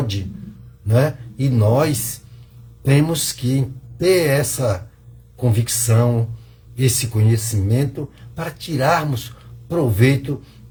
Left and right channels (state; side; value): identical; both; correlation 1.00